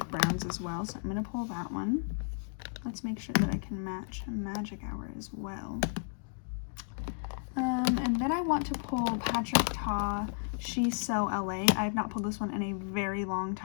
browns as well, so I'm going to pull that one. Let's make sure that I can match Magic Hour as well. And then I want to pull Patrick Ta She's So LA. I have not pulled this one in a very long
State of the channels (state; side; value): silent; right; 56 dB below the other